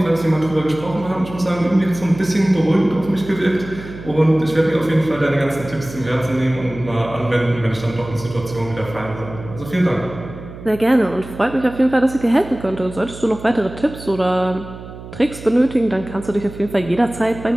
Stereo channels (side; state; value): right; noise; hum, 14 dB below the sound